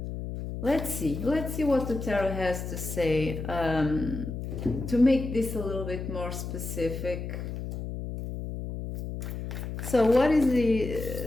Let's see what the tarot has to say to make this a little bit more specific. So what is the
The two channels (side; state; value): left; noise; hum, 6 dB below the sound